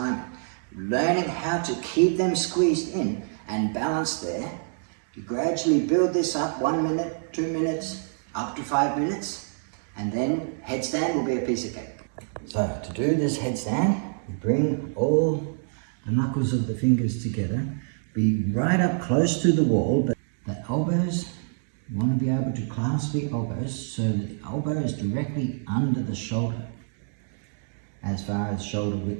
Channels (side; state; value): left; silent; digital silence